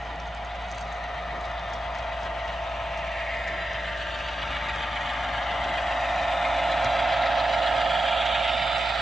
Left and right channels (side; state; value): both; normal; correlation 0.90